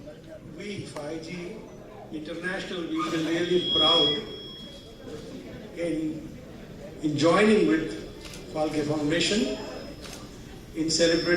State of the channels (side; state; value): both; identical; correlation 1.00